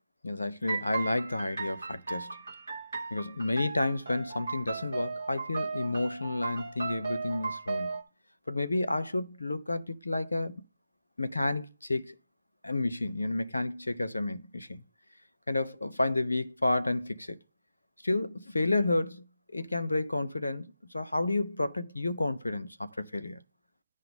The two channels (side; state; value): both; inverted; correlation -0.92